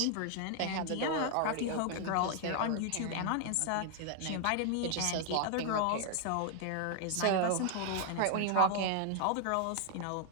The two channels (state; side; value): different; both; correlation 0.00